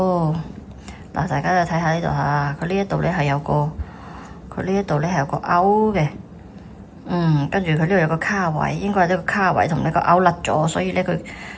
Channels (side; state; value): both; identical; correlation 1.00